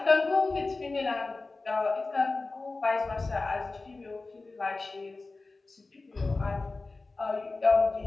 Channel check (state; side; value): quieter; right; 3.5 dB